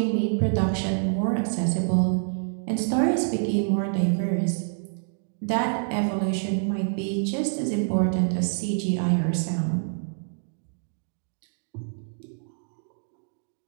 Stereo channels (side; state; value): left; silent; 60 dB below the other